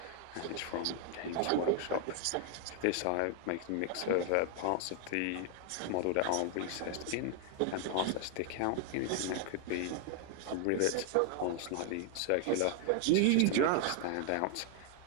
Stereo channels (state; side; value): different; both; correlation 0.00